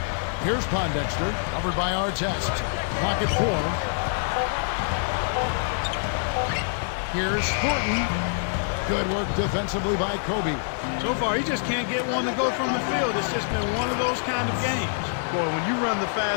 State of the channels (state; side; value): silent; right; digital silence